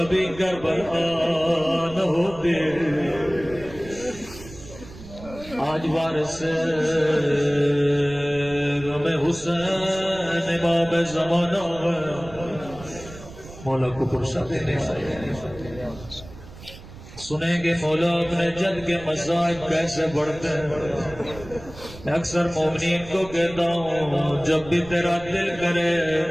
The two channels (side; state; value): right; noise; rumble, 16 dB below the sound